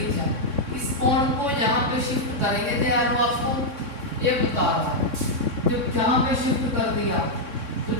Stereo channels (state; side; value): late; left; 3.6 ms